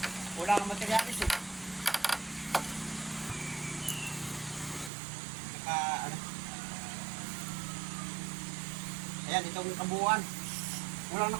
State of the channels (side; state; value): left; drops out; at 4.9 s